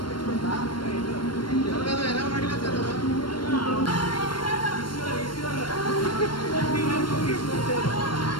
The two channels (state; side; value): late; right; 0.72 ms